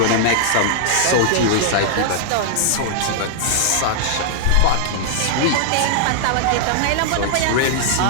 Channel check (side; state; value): both; different; correlation -0.01